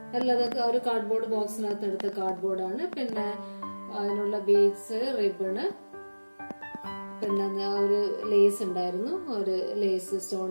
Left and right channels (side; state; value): both; inverted; correlation -1.00